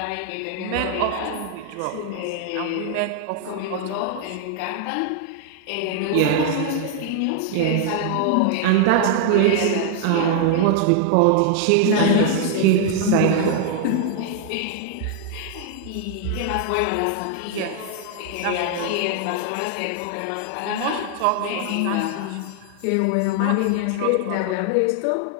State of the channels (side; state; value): both; different; correlation 0.00